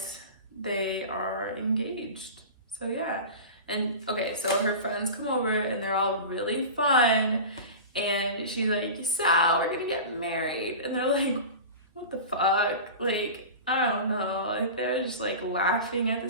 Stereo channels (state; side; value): inverted; both; correlation -0.32